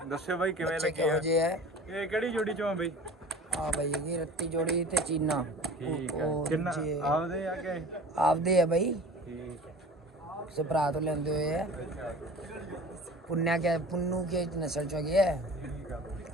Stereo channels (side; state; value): both; normal; correlation 0.41